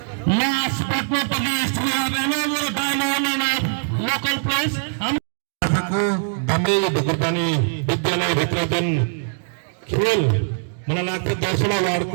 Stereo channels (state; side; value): silent; left; digital silence